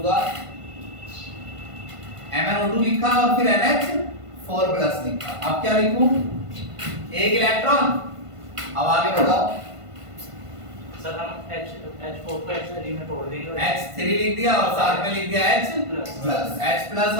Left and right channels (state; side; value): late; left; 1.5 ms